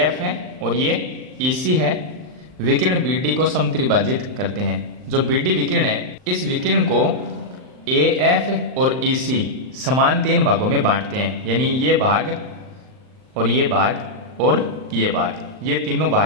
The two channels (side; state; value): left; late; 39 ms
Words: है और ये EC है, विकिरण BD को समत्रिभाजित करते हैं। जो BD विकिरण है, इस विकिरण को AF और EC समान 3 भागों में बांटते हैं, यानी ये भाग और ये भाग और ये भाग, ये तीनों